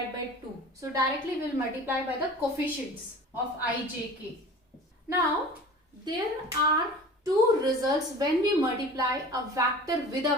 by 2. So directly we will multiply by the coefficients of I, j, k. Now there are two results when we multiply a vector with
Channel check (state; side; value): normal; both; correlation 0.40